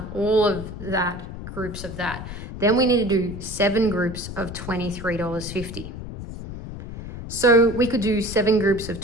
all of that, groups of that. Then we need to do 7 groups of $23.50. So we could do 7 groups of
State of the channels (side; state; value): left; noise; rumble, 10 dB below the sound